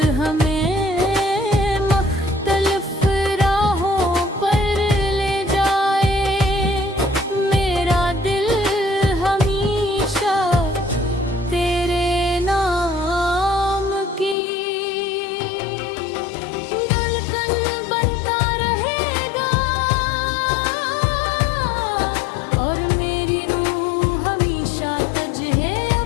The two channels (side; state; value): right; drops out; at 14.4 s